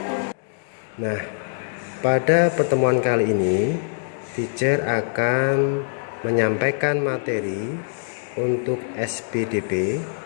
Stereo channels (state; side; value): silent; right; digital silence